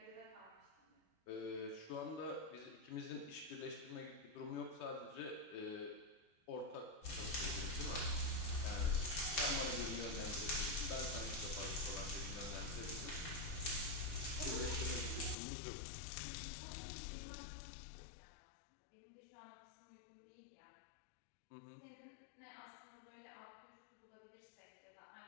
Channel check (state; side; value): drops out; right; at 15.4 s